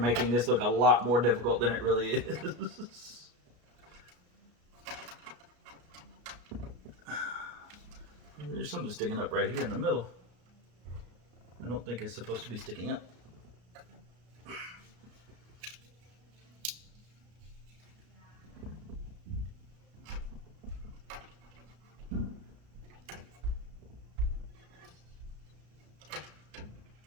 this look a lot more difficult than it really is. There's something sticking up right here in the middle. I don't think it's supposed to be sticking up.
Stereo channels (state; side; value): late; left; 33 ms